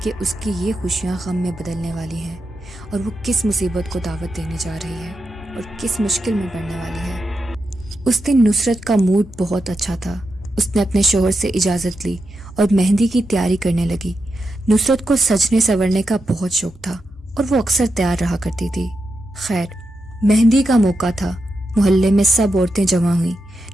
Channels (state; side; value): normal; both; correlation 0.87